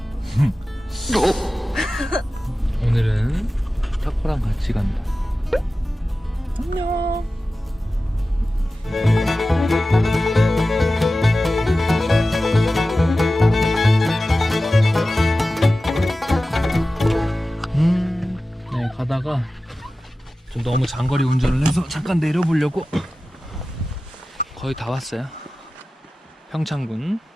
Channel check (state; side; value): normal; both; correlation 0.95